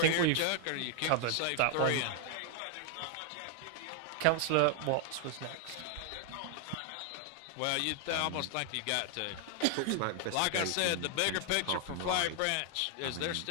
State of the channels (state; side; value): different; both; correlation 0.00